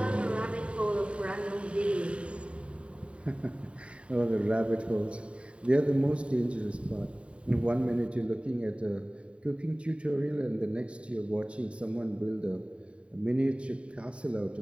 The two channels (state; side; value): late; left; 0.060 ms